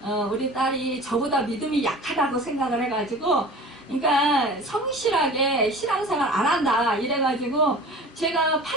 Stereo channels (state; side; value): normal; both; correlation 0.40